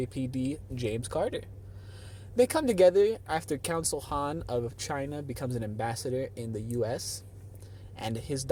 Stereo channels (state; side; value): identical; both; correlation 1.00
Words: James Carter. They come together after Council Han of China becomes an ambassador in the U.S., and his